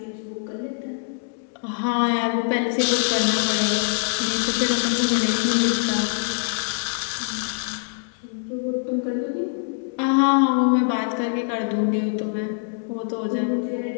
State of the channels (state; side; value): silent; right; digital silence